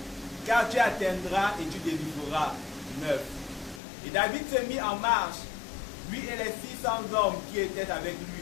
car tu atteindras et tu délivreras. 9. Et David se mit en marche, lui et les 600 hommes qui étaient avec lui.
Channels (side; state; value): right; drops out; at 3.8 s